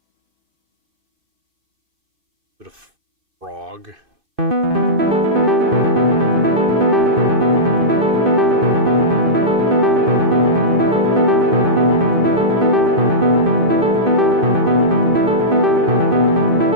Bit of frog.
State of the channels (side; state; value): left; late; 2.6 ms